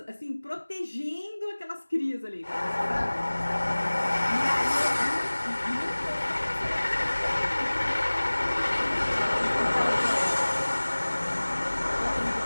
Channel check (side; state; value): both; inverted; correlation -1.00